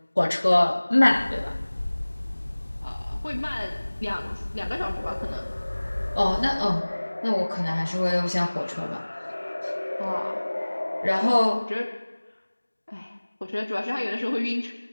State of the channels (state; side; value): inverted; both; correlation -1.00